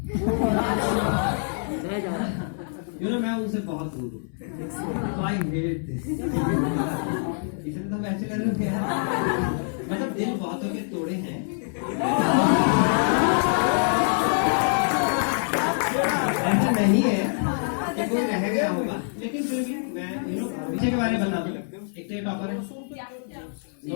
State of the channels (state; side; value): silent; right; 61 dB below the other